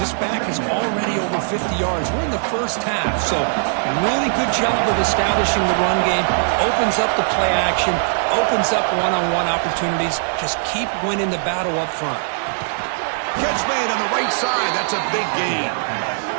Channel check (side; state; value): left; silent; digital silence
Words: back is already over 50 yards. We're in the 1st half, so really good job of establishing the run game. Opens up the play action, opens up one-on-one opportunities. Just keep winning the battle up front. Catch made on the right side. That's a big gain.